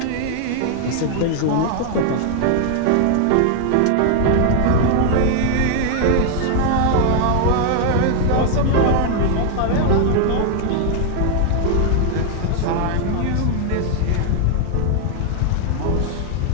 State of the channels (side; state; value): both; different; correlation 0.00